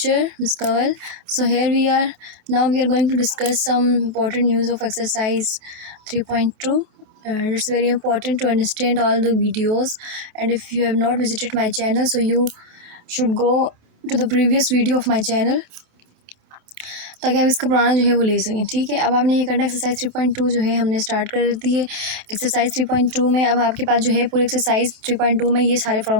Ms. Kawal. So here we are. Now we are going to discuss some important news of exercise 3.2. And it's very important to understand all the videos. And if you have not visited my channel, so you should go to the previous video of my channel ताकि आप इसका पुराना जो है वो ले सकें। ठीक है, अब आपने ये करना एक्सरसाइज 3.2 जो है हमने स्टार्ट कर दी है। एक्सरसाइज 3.2 में अब आपके पास जो है पूरे एक्सरसाइज 3.2 में ये सारे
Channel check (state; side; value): late; left; 27 ms